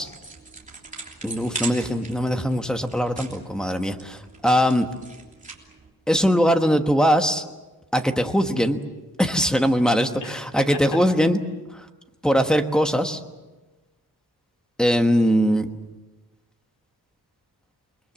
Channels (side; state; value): both; normal; correlation 0.84